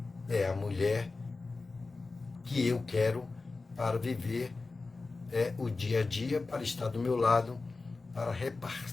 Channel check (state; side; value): quieter; right; 3.8 dB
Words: é a mulher que eu quero para viver o dia a dia, para estar do meu lado, para